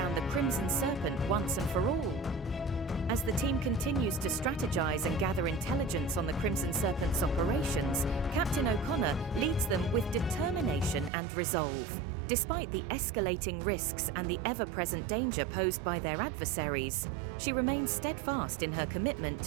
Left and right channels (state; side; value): drops out; left; at 11.1 s